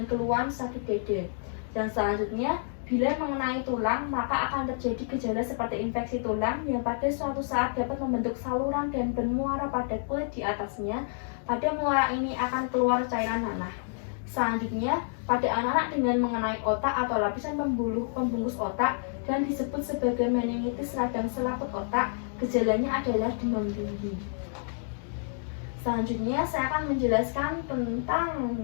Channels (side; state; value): right; silent; digital silence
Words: keluhan sakit dada. Dan selanjutnya, bila mengenai tulang, maka akan terjadi gejala seperti infeksi tulang yang pada suatu saat dapat membentuk saluran dan bermuara pada kulit di atasnya. Pada muara ini akan keluar cairan nanah. Selanjutnya, pada anak-anak dengan mengenai otak atau lapisan pembungkus otak dan disebut sebagai meningitis radang selaput otak, gejalanya adalah demam tinggi. Selanjutnya, saya akan menjelaskan tentang